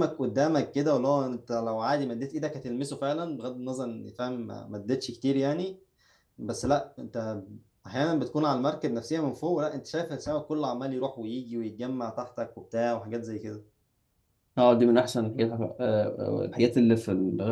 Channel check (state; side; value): identical; both; correlation 1.00